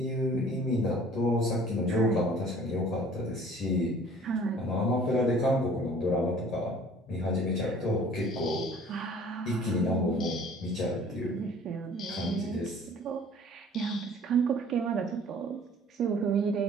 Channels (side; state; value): both; normal; correlation 0.50